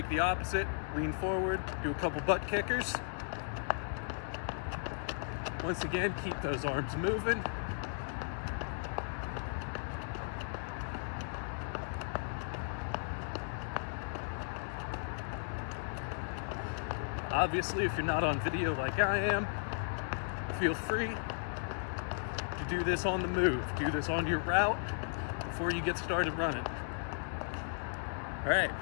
the opposite, lean forward, do a couple butt kickers. Once again, keep those arms moving. Obviously, if you're not on video like I am, feel free to do this on the move. Do this on your route before you get started running. All right,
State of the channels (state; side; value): silent; right; 54 dB below the other